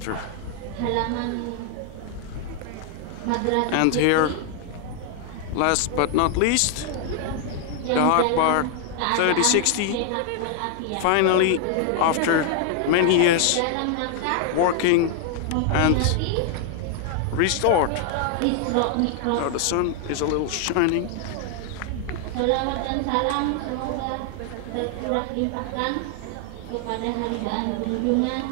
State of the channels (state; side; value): different; both; correlation 0.00